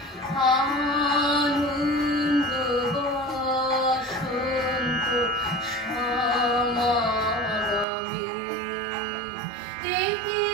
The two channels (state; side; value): drops out; left; at 7.9 s